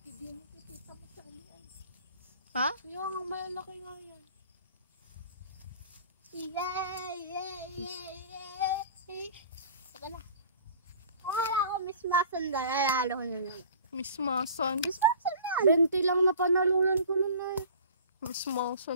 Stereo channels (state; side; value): inverted; both; correlation -0.45